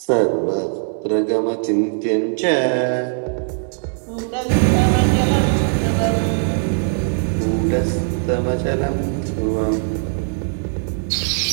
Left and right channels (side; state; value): left; silent; digital silence